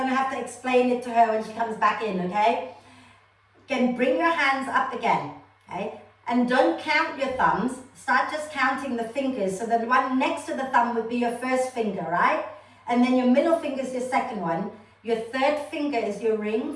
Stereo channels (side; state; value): both; identical; correlation 1.00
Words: to have to explain it to her when she comes back in. Okay, again, bring your hands up again. Okay, and don't count your thumbs, start just counting the fingers. So the one next to the thumb would be your first finger, right? And then your middle finger is your second one. Your third finger is your ring